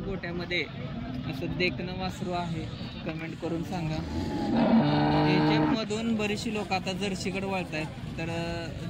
असं देखणं वासरू आहे कमेंट करून सांगा. याच्यामधून बरीचशी लोक आता जर्शीकडे वळत आहेत. तर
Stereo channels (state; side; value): identical; both; correlation 1.00